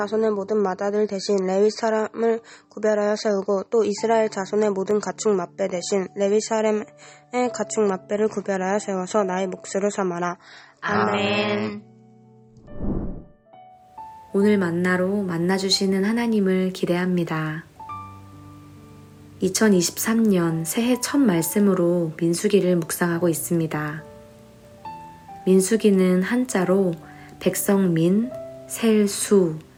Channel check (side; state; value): both; identical; correlation 1.00